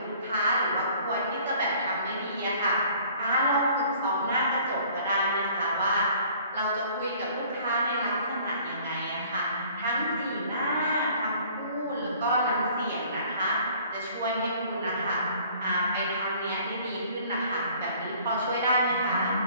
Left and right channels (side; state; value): both; inverted; correlation -0.54